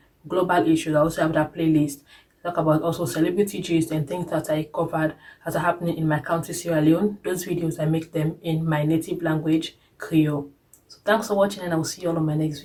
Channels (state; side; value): identical; both; correlation 1.00